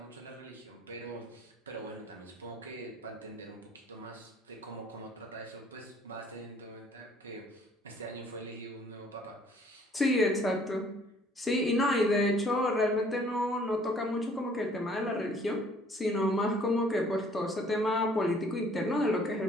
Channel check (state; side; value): normal; both; correlation 0.58